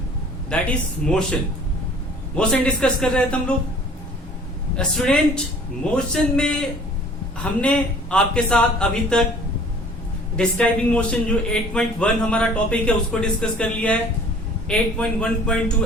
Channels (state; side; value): normal; both; correlation 0.51